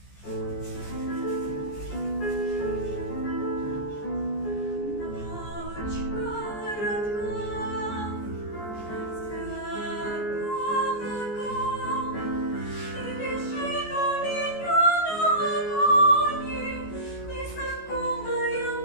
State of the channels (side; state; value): right; late; 14 ms